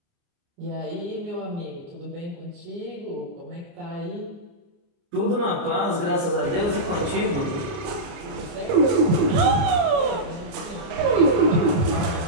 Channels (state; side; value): late; left; 29 ms